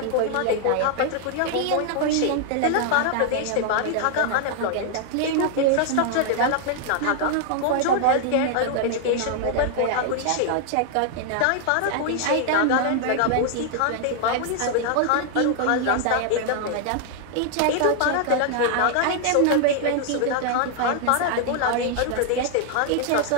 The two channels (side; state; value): both; different; correlation 0.00